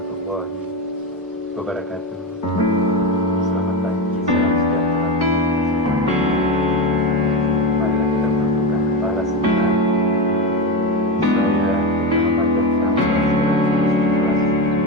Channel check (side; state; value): both; normal; correlation 0.16